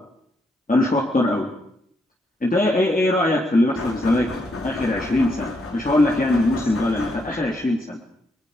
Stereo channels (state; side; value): normal; both; correlation 0.77